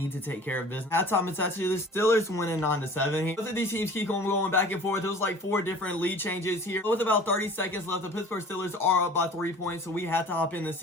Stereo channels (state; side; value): normal; both; correlation 0.45